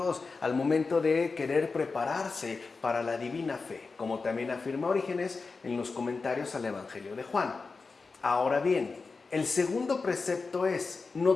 al momento de querer prepararse para la divina fe, como también afirma Orígenes en los comentarios al Evangelio de Juan. Ahora bien, el segundo precepto es: no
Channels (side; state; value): right; quieter; 4.3 dB